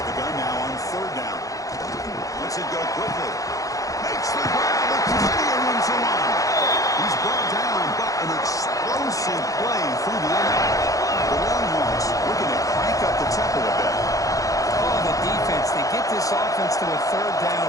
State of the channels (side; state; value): right; late; 0.17 ms